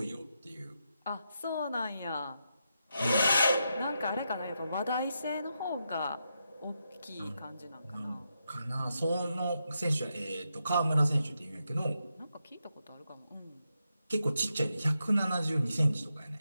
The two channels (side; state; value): both; inverted; correlation -0.85